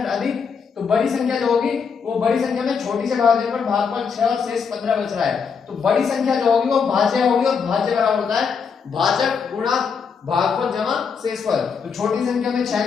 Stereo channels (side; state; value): right; quieter; 6.0 dB